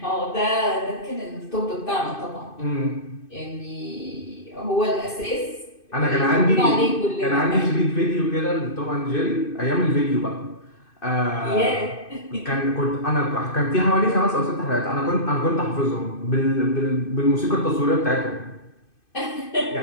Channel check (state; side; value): late; right; 2.5 ms